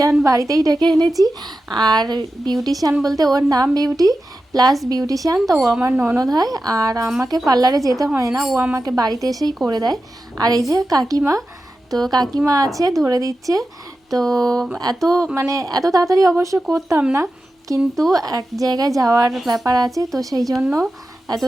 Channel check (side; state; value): both; normal; correlation 0.92